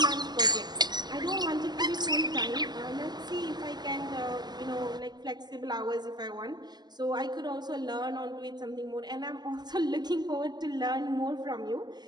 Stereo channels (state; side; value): late; left; 0.20 ms